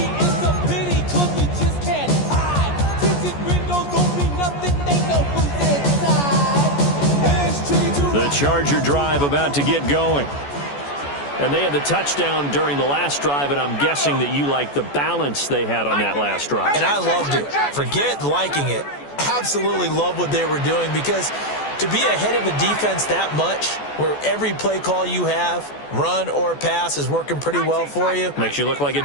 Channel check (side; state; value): right; late; 14 ms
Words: The Charger drive about to get going. And they had the touchdown during the last drive, and I'm guessing that you like the balance they had on that last drive. And I loved it. Forget liking it. Absolutely love what they were doing, because to be ahead of a defense that much, where every play call you have, run or pass, is working pretty well for you. Makes you look like a